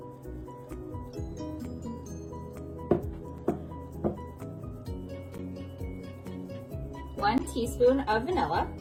1 teaspoon of vanilla,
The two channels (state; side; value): identical; both; correlation 1.00